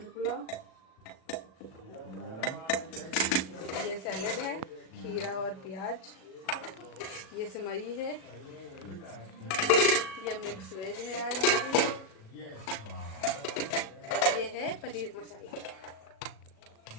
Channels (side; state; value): right; late; 37 ms